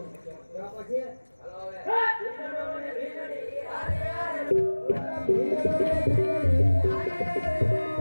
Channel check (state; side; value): inverted; both; correlation -1.00